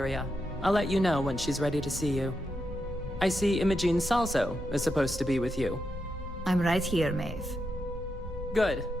I'll let you know when she's ready to see you. I see Imogene Salso is supposed to be with you. I'm right here, Maeve. Good.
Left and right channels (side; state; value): both; normal; correlation 0.85